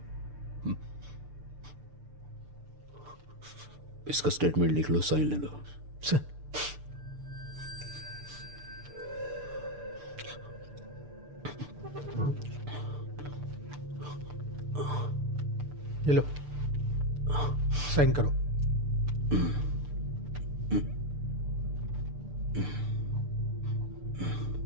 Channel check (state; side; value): late; left; 6.8 ms